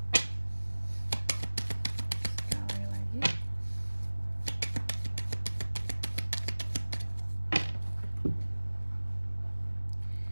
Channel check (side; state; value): both; inverted; correlation -1.00